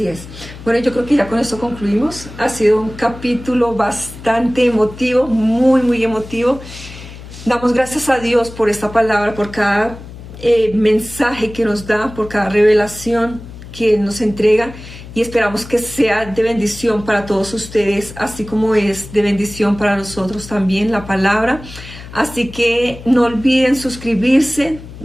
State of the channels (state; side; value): noise; left; hum, 15 dB below the sound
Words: es. Bueno, yo creo que ya con esto concluimos. Ha sido un capítulo bastante emotivo, muy emotivo. Damos gracias a Dios por esta palabra, por cada mensaje que nos da, por cada revelación que nos entrega, y esperamos que sea de bendición para todos ustedes, así como es de bendición para nosotros también la palabra. Así que no olviden suscribirse,